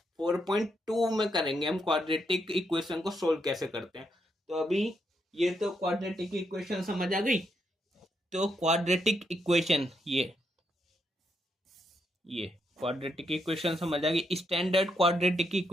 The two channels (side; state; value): both; normal; correlation 0.79